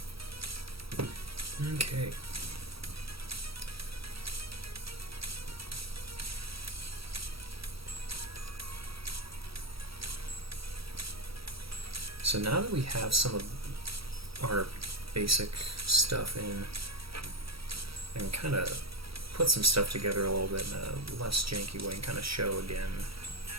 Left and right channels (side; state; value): left; late; 0.76 ms